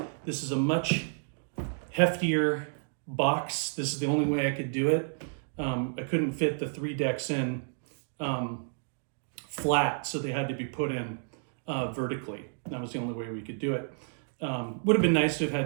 this is a much heftier box. This is the only way I could do it. I couldn't fit the 3 decks in flat, so they had to be put in vertically. That was the only way we could do it. Would have been nice to have had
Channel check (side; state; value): left; silent; digital silence